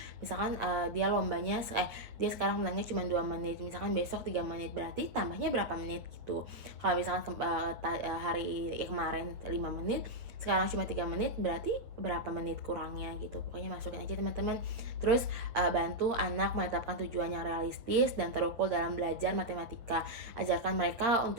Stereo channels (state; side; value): late; left; 8.4 ms